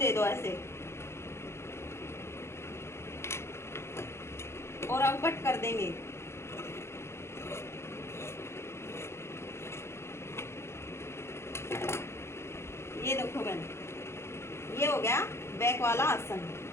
दो ऐसे, और अब कट कर देंगे। ये देखो बहन, ये हो गया बैक वाला आसन,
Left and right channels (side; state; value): right; late; 0.13 ms